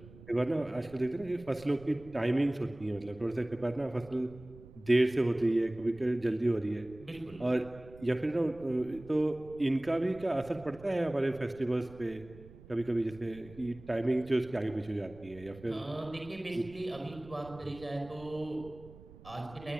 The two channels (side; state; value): right; noise; rumble, 19 dB below the sound